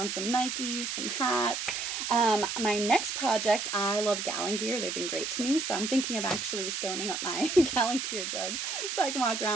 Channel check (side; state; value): right; noise; hiss, 3 dB below the sound